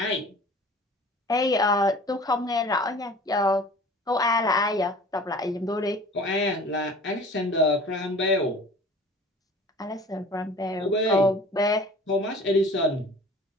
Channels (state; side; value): normal; both; correlation 0.44